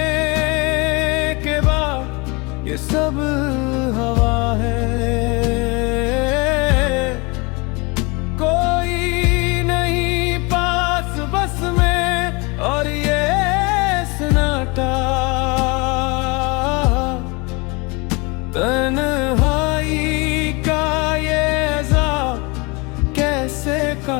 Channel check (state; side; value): quieter; right; 27.7 dB